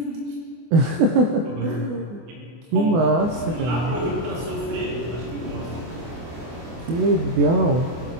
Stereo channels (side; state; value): left; late; 24 ms